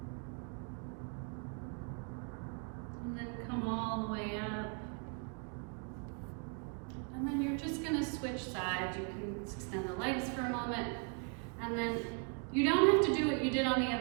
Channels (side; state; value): left; quieter; 37.0 dB